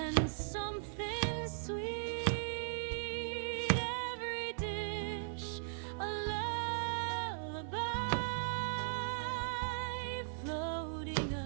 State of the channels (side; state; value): left; silent; 52 dB below the other